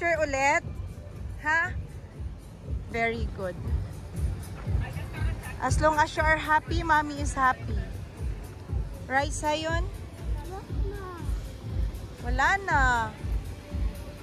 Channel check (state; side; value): identical; both; correlation 1.00